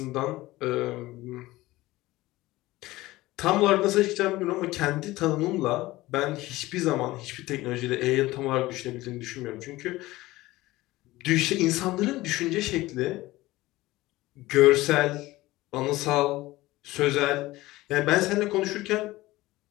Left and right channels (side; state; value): right; quieter; 18.4 dB